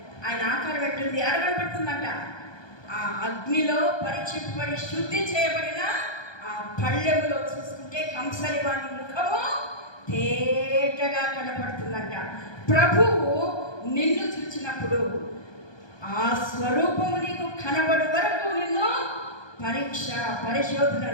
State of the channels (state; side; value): late; right; 1.2 ms